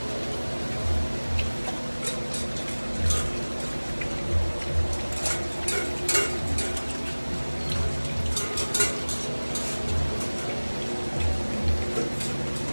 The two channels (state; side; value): inverted; both; correlation -1.00